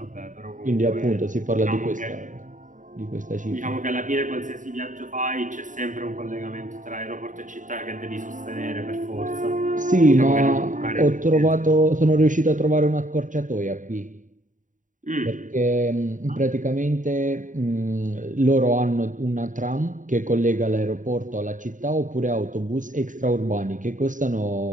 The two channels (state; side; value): late; left; 0.37 ms